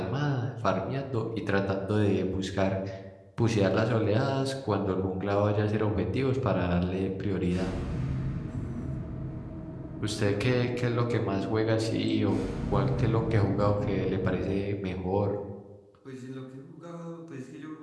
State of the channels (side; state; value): both; identical; correlation 1.00